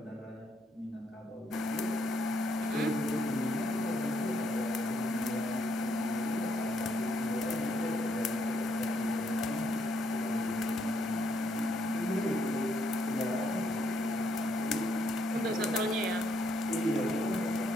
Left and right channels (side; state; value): both; normal; correlation 0.73